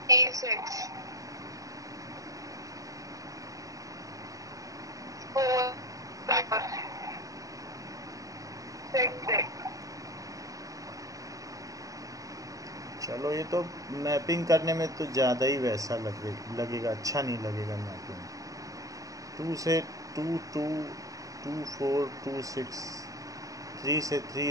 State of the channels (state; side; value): late; left; 0.17 ms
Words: 8 6 4 6 6। चलो, ये तो मैपिंग करने में तो ज़्यादा ही वैसा लगेगा, अच्छा नहीं लगेगा मैपिंग। 2 से 2 2 2 4 2 6, 3 से